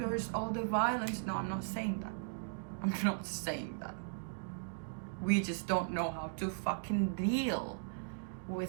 all the violence. No, I'm not saying that. I'm not saying that. We just don't know how to fucking deal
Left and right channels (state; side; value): silent; left; digital silence